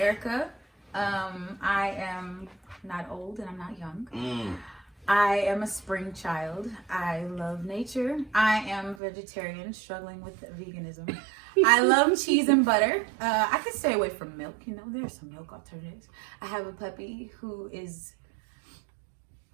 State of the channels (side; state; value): left; drops out; at 9.0 s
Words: I am not old and I'm not young. I am a spring child. I love nature. I am vegetarian, struggling with veganism. I love cheese and butter. I could stay away from milk. There's some milk alternatives. I have a puppy who is